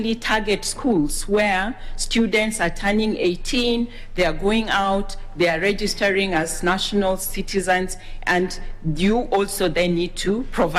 target schools where students are turning 18, they are going out, they are registering as national citizens, and you also then need to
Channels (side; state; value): both; identical; correlation 1.00